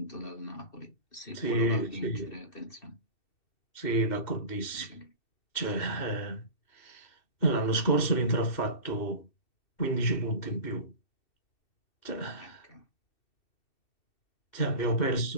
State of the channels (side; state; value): right; late; 2.7 ms